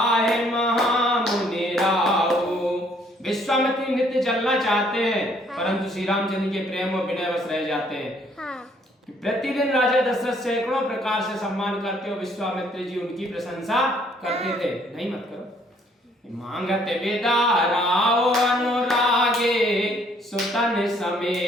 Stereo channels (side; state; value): both; normal; correlation 0.64